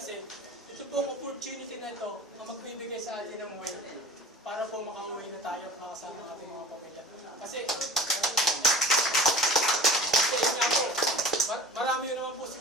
ito pong opportunity na ito na magbibigay sa atin ng way para po makauwi na tayo at makasama ang ating mga pamilya. Kasi nga po, marami yun naman po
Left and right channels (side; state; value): both; normal; correlation 0.40